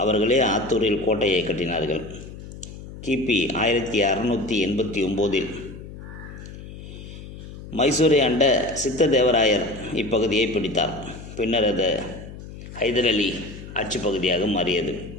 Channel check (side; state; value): left; noise; hum, 14 dB below the sound